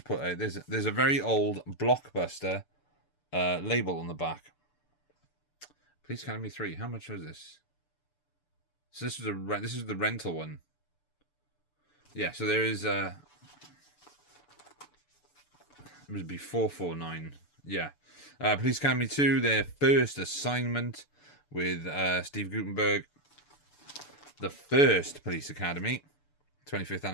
put there's a very old Blockbuster label on the back. Police Academy 3. How much was this? So this is the rental one. Yeah, so there is it would be 449. Yeah. Police Academy 2, their first assignment with Steve Guttenberg. The first Police Academy, 25th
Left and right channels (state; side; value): late; right; 6.9 ms